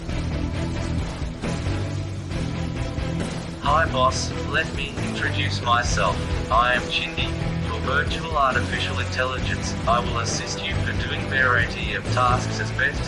Hi boss, let me introduce myself. I am Chindi, your virtual artificial intelligence. I will assist you for doing variety of tasks as best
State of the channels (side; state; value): both; identical; correlation 1.00